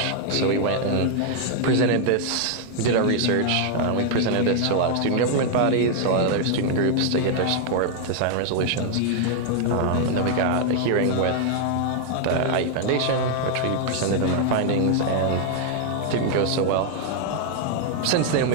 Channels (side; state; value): both; different; correlation 0.00